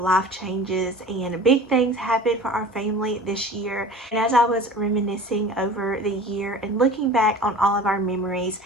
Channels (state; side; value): normal; both; correlation 0.40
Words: changes and big things happen for our family this year, and as I was reminiscing over the year and looking back on all of our memories,